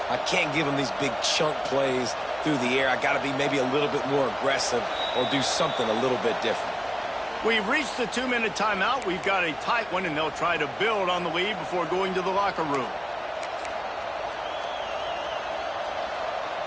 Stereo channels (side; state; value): both; identical; correlation 1.00